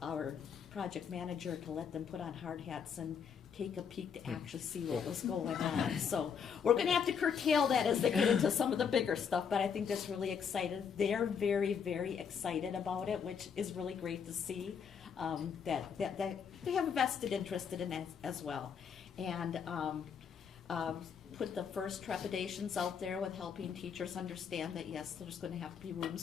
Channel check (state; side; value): quieter; right; 6.9 dB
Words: our project manager to let them put on hard hats and take a peek to actually see what was going on. So we're going to have to curtail that as they get into some of the bigger stuff, but I think that's really exciting. They're very, very excited about it, which is really great to see, that they have a vested interest in it as well. And put the first trepidations out there with helping teachers understand that, yes, there's going to have to be